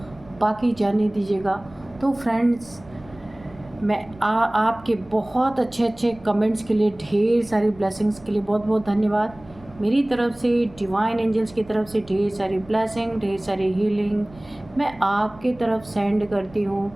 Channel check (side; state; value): right; noise; rumble, 22 dB below the sound